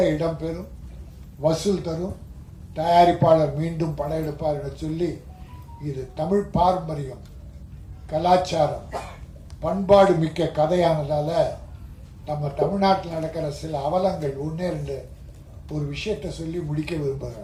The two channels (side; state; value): both; identical; correlation 1.00